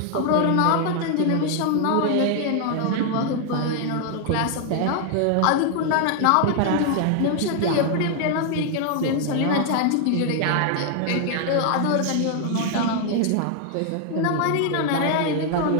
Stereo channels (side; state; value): both; different; correlation 0.00